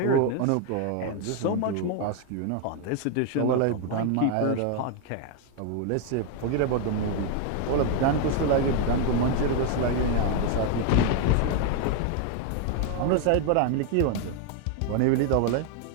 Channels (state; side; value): different; both; correlation 0.01